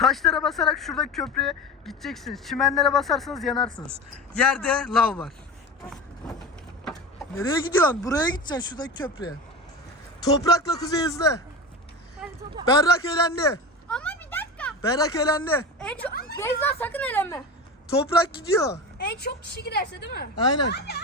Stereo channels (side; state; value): both; normal; correlation 0.28